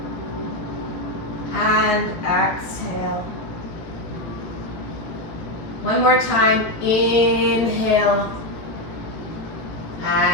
and exhale. One more time. Inhale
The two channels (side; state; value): right; late; 17 ms